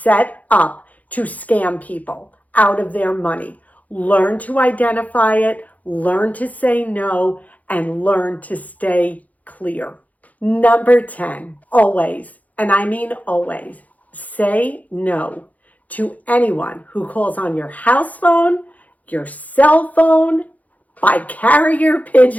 up to scam people out of their money. Learn to identify it, learn to say no, and learn to stay clear. Number 10, always, and I mean always, say no to anyone who calls on your house phone, your cell phone, by carrier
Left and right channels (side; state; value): right; late; 0.075 ms